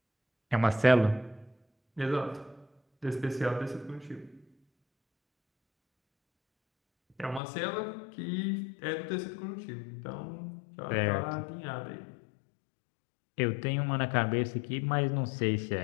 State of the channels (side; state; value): right; drops out; at 7.4 s